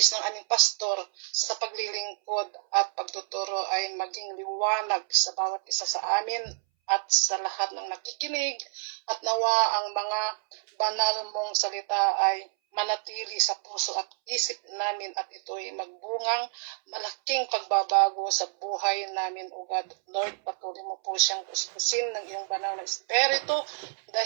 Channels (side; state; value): left; silent; 59 dB below the other